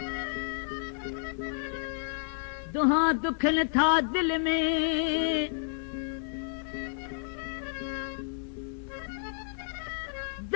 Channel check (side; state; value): right; silent; 57 dB below the other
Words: दुहा दुखन था दिल में